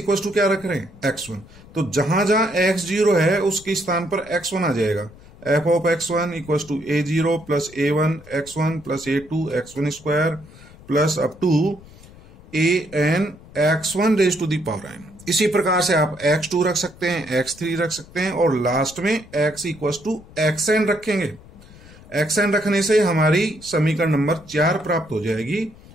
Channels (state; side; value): noise; left; rumble, 21 dB below the sound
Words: टू क्या रख रहे हैं, x1। तो जहां जहां x0 है उसके स्थान पर x1 आ जाएगा, F of x1 equal to a0 plus a1 x1 plus a2 x1 square plus up to an x1 raise to the power n। इसी प्रकार से आप x2 रख सकते हैं, x3 रख सकते हैं और लास्ट में x इक्वल टू xn रखेंगे। xn रखने से हमारी समीकरण नंबर 4 प्राप्त हो जाएगी।